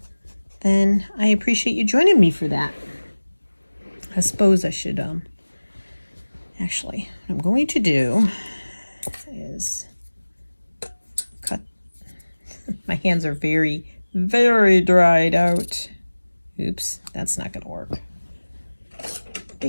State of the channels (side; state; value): both; inverted; correlation -1.00